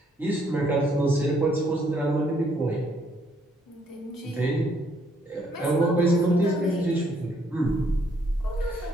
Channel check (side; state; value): both; normal; correlation 0.69